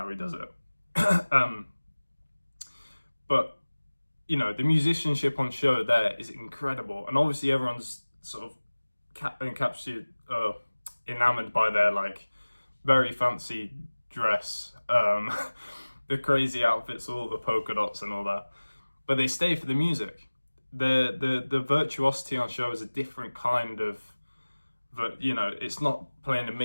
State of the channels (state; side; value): inverted; both; correlation -1.00